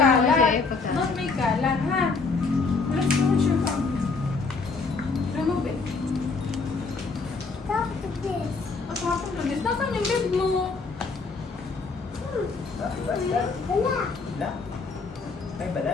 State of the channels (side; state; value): right; quieter; 4.3 dB